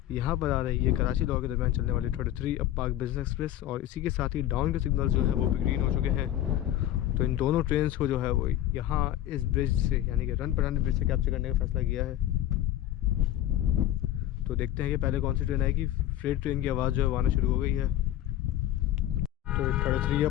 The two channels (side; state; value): right; quieter; 13.0 dB